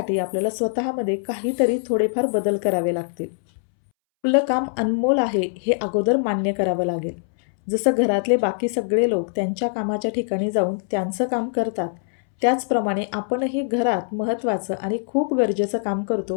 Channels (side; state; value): right; silent; 64 dB below the other